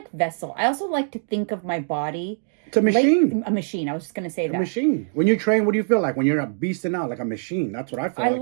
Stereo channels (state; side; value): silent; left; digital silence